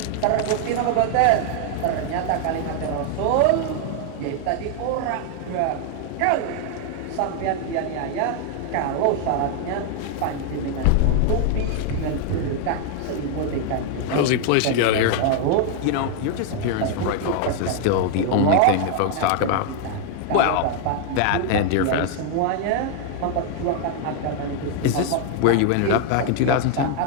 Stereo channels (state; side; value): different; both; correlation 0.00